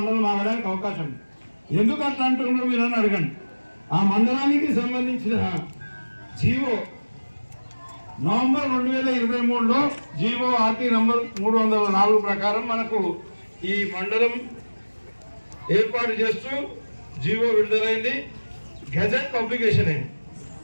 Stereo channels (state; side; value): inverted; both; correlation -1.00